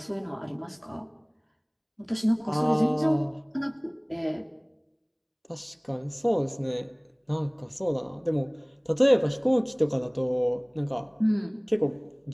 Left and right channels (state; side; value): identical; both; correlation 1.00